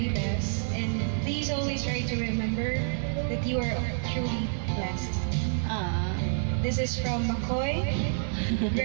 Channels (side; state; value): left; silent; digital silence